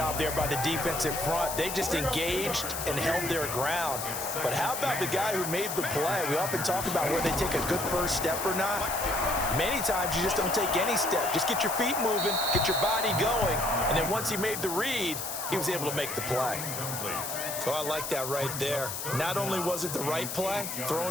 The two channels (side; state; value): left; noise; hiss, 5 dB below the sound